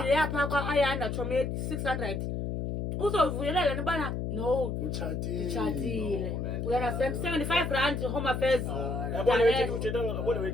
yapha kwa ayanda chome 600 uzovuyelela nibana no uchatile we understand 75 rand home affairs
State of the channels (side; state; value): left; noise; hum, 3 dB below the sound